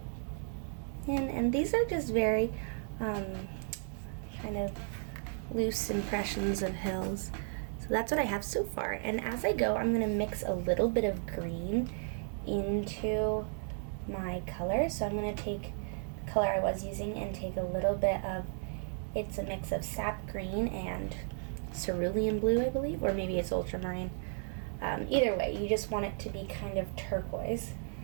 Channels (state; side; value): silent; left; 55 dB below the other